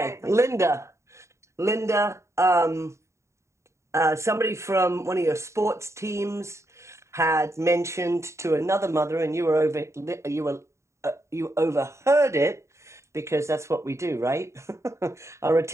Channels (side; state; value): left; late; 0.14 ms